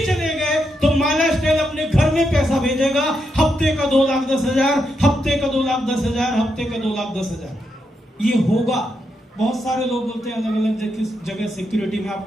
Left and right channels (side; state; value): both; normal; correlation 0.82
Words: चले गए तो माइलस्टेल अपने घर में पैसा भेजेगा, हफ्ते का 2,10,000, हफ्ते का 2,10,000, हफ्ते का 2,10,000। ये होगा। बहुत सारे लोग बोलते हैं अलग अलग जगह सिक्योरिटी में।